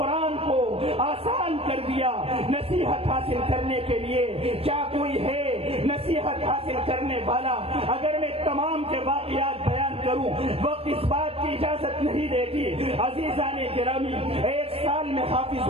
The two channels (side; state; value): left; late; 0.28 ms